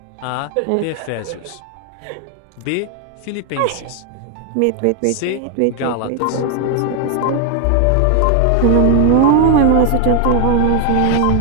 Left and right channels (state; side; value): different; both; correlation 0.00